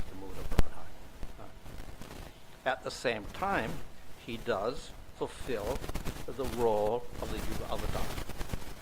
the mood of Radha. At the same time, he does fulfill the role of the Yuga Avatar.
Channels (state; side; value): identical; both; correlation 1.00